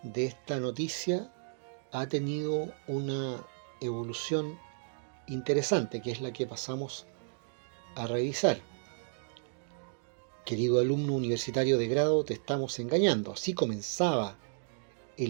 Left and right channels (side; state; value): left; silent; digital silence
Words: de esta noticia ha tenido una evolución interesante, que es la que pasamos a revisar. Querido alumno universitario de grado, te estamos engañando. Así comenzaba